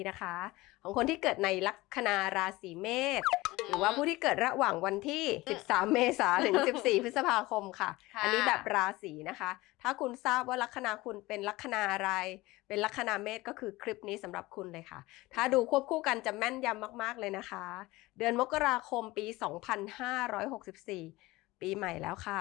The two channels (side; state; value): right; quieter; 20.1 dB